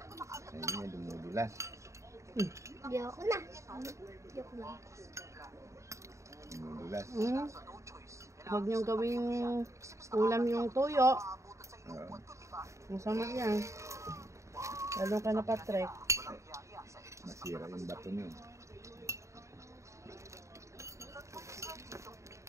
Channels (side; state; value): left; late; 0.14 ms